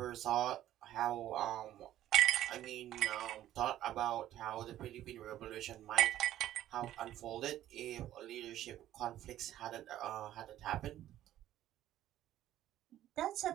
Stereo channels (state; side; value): quieter; left; 12.9 dB